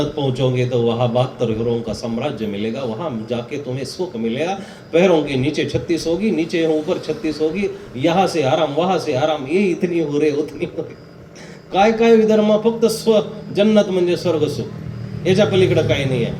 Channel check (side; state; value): both; identical; correlation 1.00